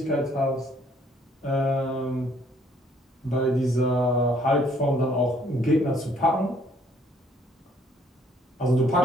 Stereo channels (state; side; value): normal; both; correlation 0.64